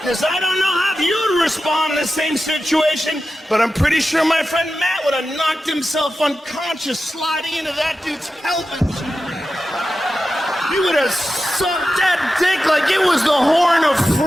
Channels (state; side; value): normal; both; correlation 0.92